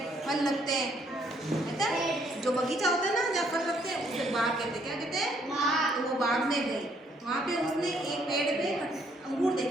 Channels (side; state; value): both; normal; correlation 0.68